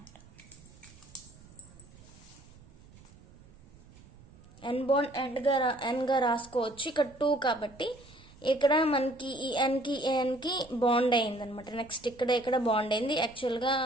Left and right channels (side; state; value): right; noise; rumble, 23 dB below the sound